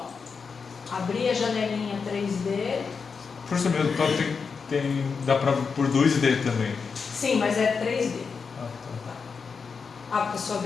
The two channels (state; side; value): quieter; right; 5.4 dB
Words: Abrir a janelinha 3D. Por isso mesmo, então dá pra por 2D também. Sim, mas é 3D. Ah, tá. Ah, porque a sua